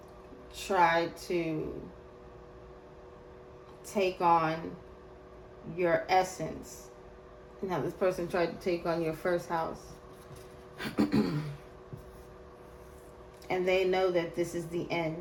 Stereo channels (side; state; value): both; identical; correlation 1.00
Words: tried to take on your essence, and how this person tried to take on your first house. And they know that this is the